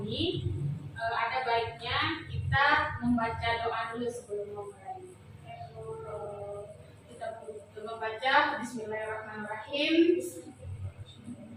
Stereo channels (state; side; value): identical; both; correlation 1.00